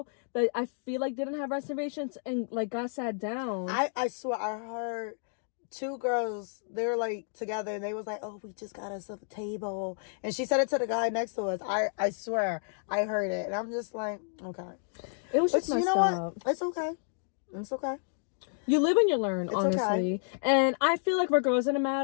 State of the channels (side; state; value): right; silent; digital silence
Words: that I feel like didn't have reservations and like got sat down. I swear I heard 2 girls, they were like together and they was like, oh, we just got us a table. And she said it to the guy next to us. I swear I heard it. And I'm just like, okay. It was just messed up. What? It's okay. It's okay. You live and you learn, honestly. Okay. And I feel like for girls in a